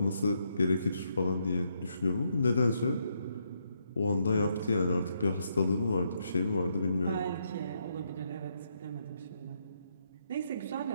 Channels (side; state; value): both; inverted; correlation -0.77